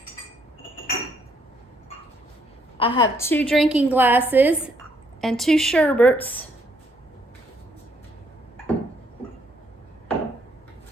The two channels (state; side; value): normal; both; correlation 0.70